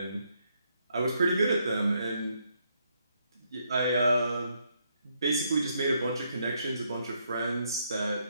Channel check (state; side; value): inverted; both; correlation -0.75